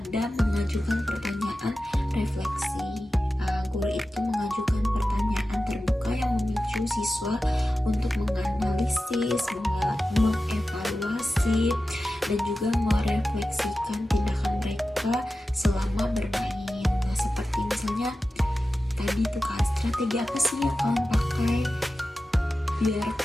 mengajukan pertanyaan refleksi. Guru itu mengajukan pertanyaan terbuka yang memicu siswa untuk menganalisis, mengevaluasi, dan juga merefleksikan tindakan mereka selama bermain. Nah, seperti misalnya tadi tuh kan, strategi apa sih yang kalian pakai biar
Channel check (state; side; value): normal; both; correlation 0.94